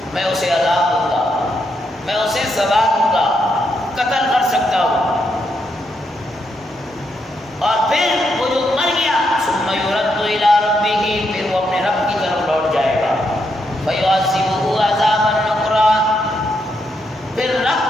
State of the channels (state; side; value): normal; both; correlation 0.80